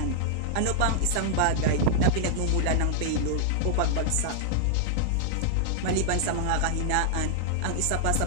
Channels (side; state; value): both; different; correlation -0.01